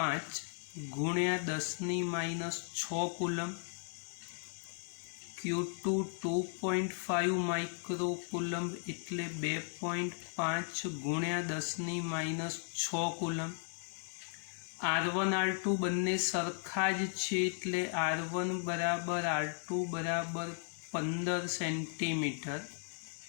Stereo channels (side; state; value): right; silent; 54 dB below the other